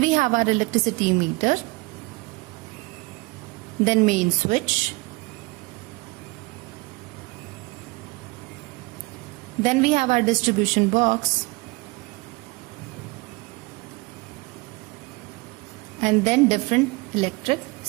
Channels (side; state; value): left; quieter; 24.7 dB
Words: we have our electricity meter. Then main switch. Then we have our distribution box. And then different electric